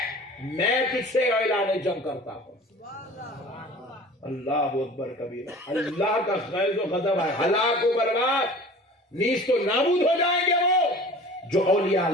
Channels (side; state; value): both; normal; correlation 0.43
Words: میں تجھ سے اعلان جنگ کرتا ہوں۔ اللہ اکبر کبیرہ، اللہ کا غیظ و غضب ہے، ہلاک و برباد، نیست و نابود ہو جائیں گے وہ جو اولیاء